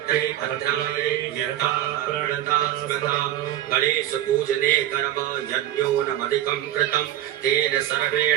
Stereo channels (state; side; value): quieter; left; 12.8 dB